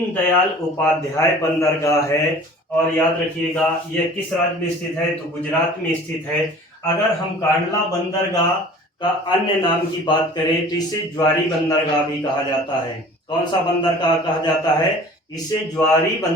उपाध्याय बंदरगाह है। और याद रखिएगा यह किस राज्य में स्थित है, तो गुजरात में स्थित है। अगर हम कांडला बंदरगाह का अन्य नाम की बात करें तो इसे ज्वारी बंदरगाह भी कहा जाता है। कौन सा बंदरगाह कहा जाता है, इसे ज्वारी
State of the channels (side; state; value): both; normal; correlation 0.45